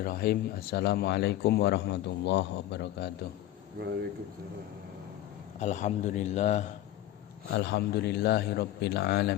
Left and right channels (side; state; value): right; quieter; 13.6 dB